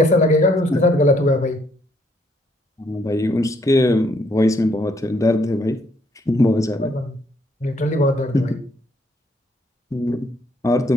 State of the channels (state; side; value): normal; both; correlation 0.69